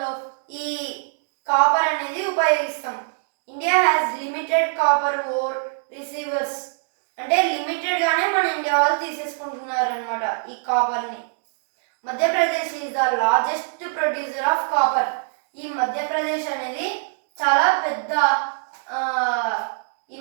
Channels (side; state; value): left; silent; digital silence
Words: ఈ కాపర్ అనేది ఉపయోగిస్తాం. India has limited copper ore receivers. అంటే లిమిటెడ్గానే మన ఇండియా వాళ్ళు తీసేసుకుంటున్నారు అనమాట ఈ కాపర్ని. Madhya Pradesh is the largest producer of copper. ఈ మధ్యప్రదేశ్ అనేది చాలా పెద్ద